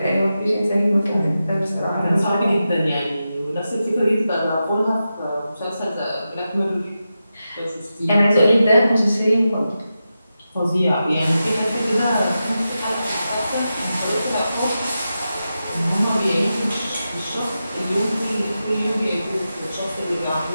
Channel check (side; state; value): both; inverted; correlation -0.90